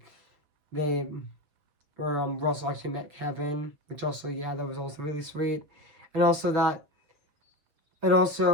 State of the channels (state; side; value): late; left; 6.9 ms